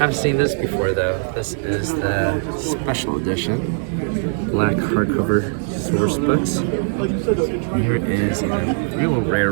seen this before though. This is the special edition. Black hardcover source books. Here is a real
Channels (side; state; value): left; silent; 65 dB below the other